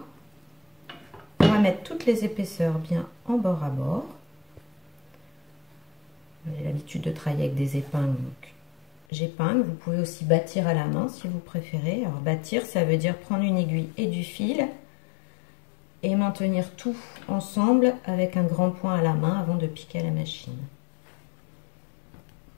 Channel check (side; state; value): right; drops out; at 9.0 s